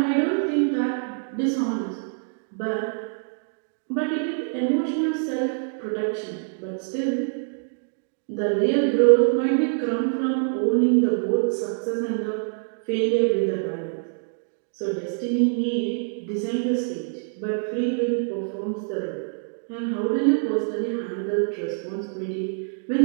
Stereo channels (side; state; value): left; silent; digital silence